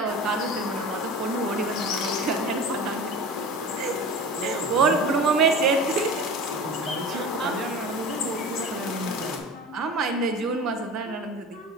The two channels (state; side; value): normal; both; correlation 0.34